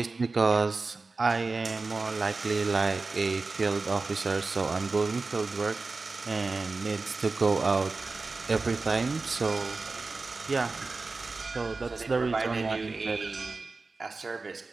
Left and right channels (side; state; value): left; quieter; 3.8 dB